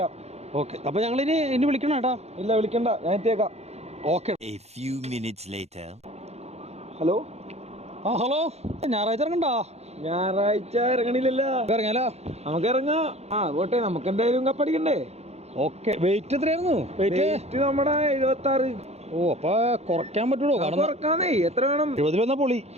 ഓക്കെ, അപ്പോൾ ഞങ്ങളിനി വിളിക്കണം കേട്ടോ. ഇല്ല, വിളിക്കണ്ട, ഞാൻ എത്തിയേക്കാം. ഓക്കെ. ഹലോ. ഹലോ, ഞായറാഴ്ച ഇറങ്ങണ്ടോ? ഞായറാഴ്ച ഇറങ്ങണില്ലല്ലോ. ഇറങ്ങിയാലോ? നമുക്ക് ഇറങ്ങാം. പോട്ടെ, നമുക്ക് എന്തായാലും കപ്പടിക്കണ്ടേ. ഓക്കെ, വെയിറ്റ് എത്രയായിരുന്നു? വെയിറ്റ് നമ്മുടെ 76. ഓ, അപ്പൊ കുറയ്ക്കാൻ പറ്റുള്ളൂ? കുറക്കാന്നേ, എത്ര വേണം? 70 വന്നാ പൊളി.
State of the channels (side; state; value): left; late; 0.31 ms